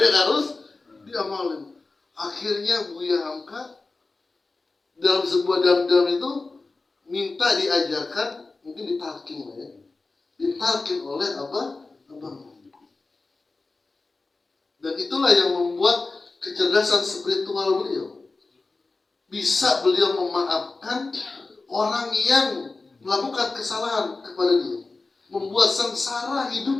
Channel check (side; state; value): right; quieter; 3.6 dB